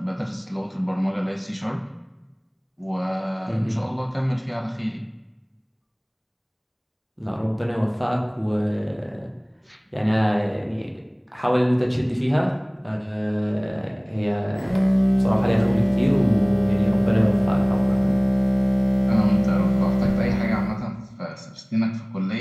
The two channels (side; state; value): both; identical; correlation 1.00